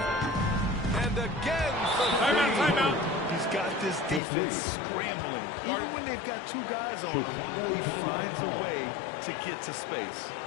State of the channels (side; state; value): right; drops out; at 4.2 s